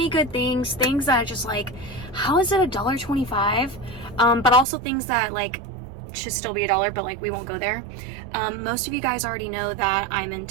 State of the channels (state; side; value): drops out; left; at 4.7 s